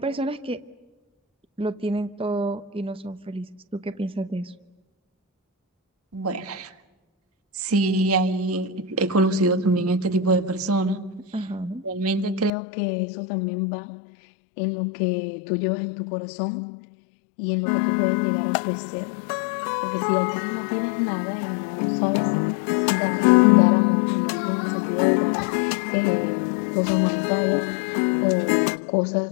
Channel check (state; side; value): drops out; right; at 12.5 s